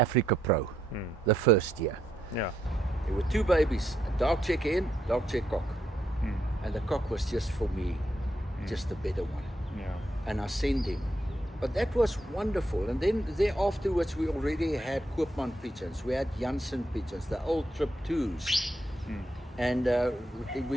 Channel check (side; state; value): both; normal; correlation 0.79